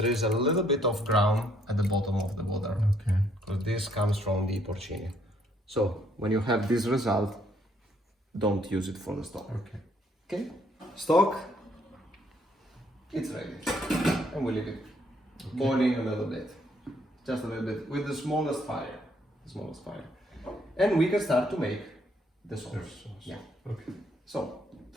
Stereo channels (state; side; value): normal; both; correlation 0.68